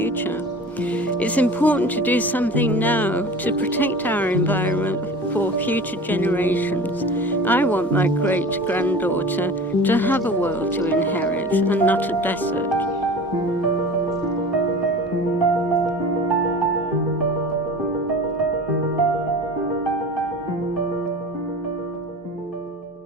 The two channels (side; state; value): both; normal; correlation 0.38